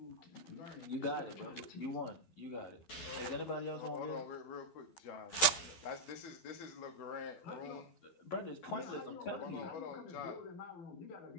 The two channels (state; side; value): late; right; 11 ms